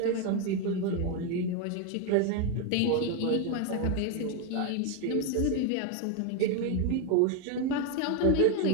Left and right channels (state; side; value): different; both; correlation 0.01